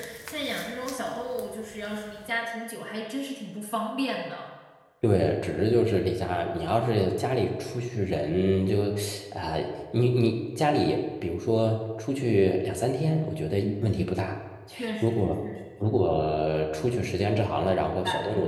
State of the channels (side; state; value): both; identical; correlation 1.00